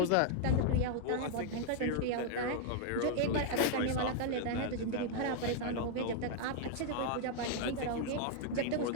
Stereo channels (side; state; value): both; different; correlation 0.00